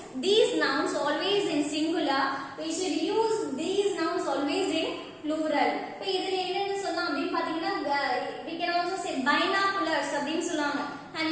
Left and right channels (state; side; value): identical; both; correlation 1.00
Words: these nouns always in singular. We should use these nouns always in plural. இப்போ இதுல என்னன்னு சொல்லலாம் அப்படின்னு பாத்தீங்கன்னா we can also say binoculars அப்படின்னு சொல்லுவாங்க. Have